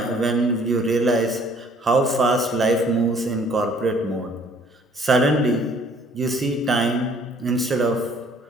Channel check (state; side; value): normal; both; correlation 0.58